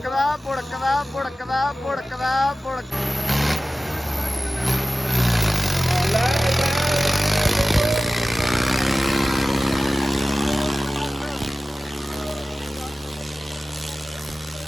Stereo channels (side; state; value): both; normal; correlation 0.96